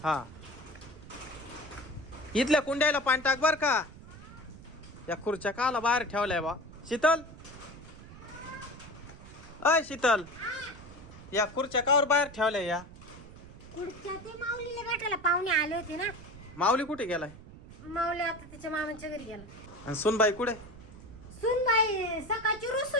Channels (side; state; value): right; noise; rumble, 17 dB below the sound